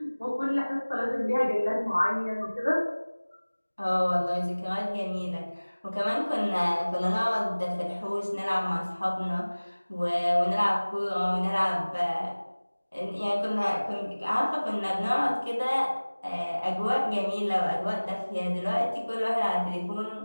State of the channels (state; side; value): inverted; both; correlation -1.00